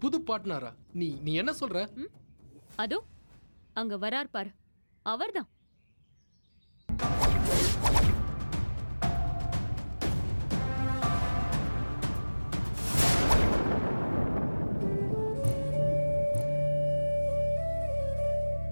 புது பார்ட்னரா? நீ என்ன சொல்ற? அதோ அங்க வரார் பாரு, அவர்தான்.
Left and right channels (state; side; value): inverted; both; correlation -1.00